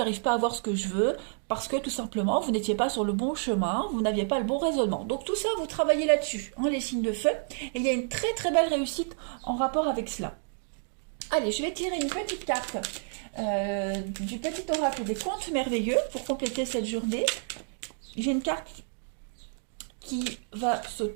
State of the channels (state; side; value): silent; left; digital silence